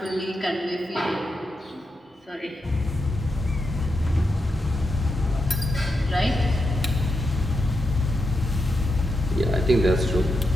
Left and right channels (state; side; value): normal; both; correlation 0.86